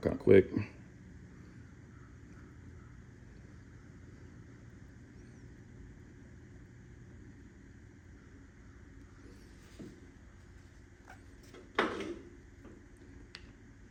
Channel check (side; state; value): both; identical; correlation 1.00